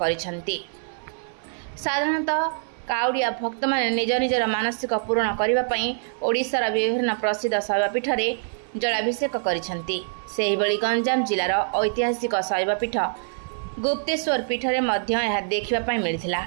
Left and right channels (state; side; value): silent; left; 59 dB below the other